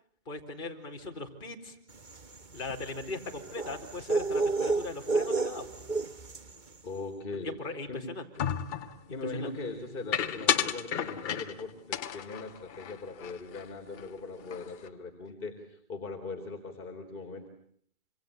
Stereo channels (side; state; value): right; late; 2.3 ms